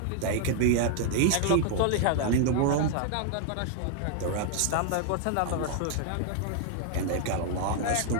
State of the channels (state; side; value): different; both; correlation 0.00